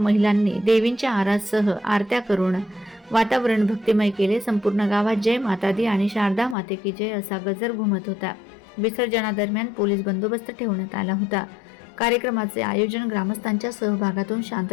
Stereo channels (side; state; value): right; drops out; at 6.6 s